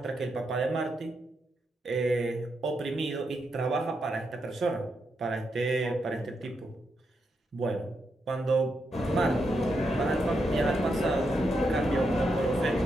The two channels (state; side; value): normal; both; correlation 0.83